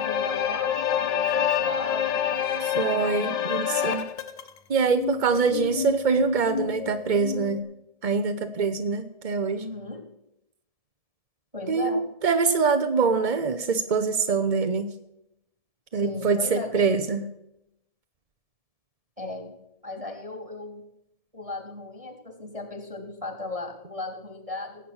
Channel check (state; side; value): late; left; 2.2 ms